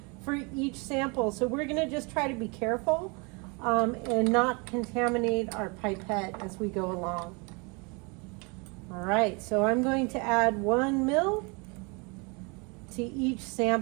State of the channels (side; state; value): left; quieter; 30.8 dB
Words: for each sample. So we're going to just try to be careful and not contaminate our pipette as we go along. All right, so I'm going to add 1 ml to each